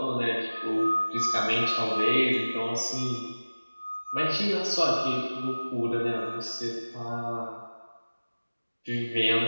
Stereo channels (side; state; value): both; inverted; correlation -1.00